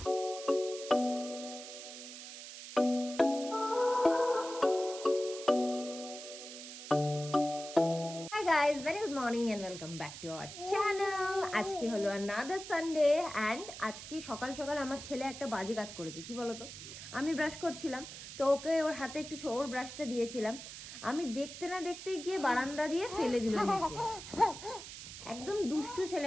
guys, very good morning and welcome back to our channel. আজকে হলো another Sunday and আজকে সকাল সকাল আমার ছেলে একটা বাজে কাজ করেছে। কি বলতো, আমি ব্রাশ করছিলাম তো ওকে ওর হাতে একটু ওর ব্রাশটা দিয়েছিলাম, আমি দেখতে না দেখতে গিয়ে বারান্দা দিয়ে ফেলে দিল নিচে। একদম দুষ্টু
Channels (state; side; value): noise; right; hiss, 11 dB below the sound